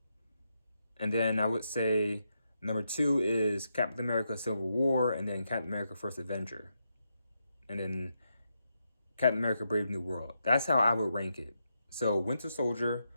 And then I would say number 2 is Captain America Civil War, and then Captain America First Avenger. And then Captain America Brave New World. That's how I would rank it. So Winter Soldier,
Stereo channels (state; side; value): inverted; both; correlation -0.83